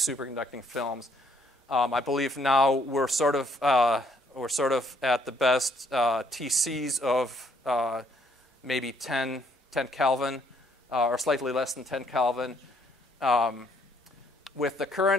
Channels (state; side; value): normal; both; correlation 0.67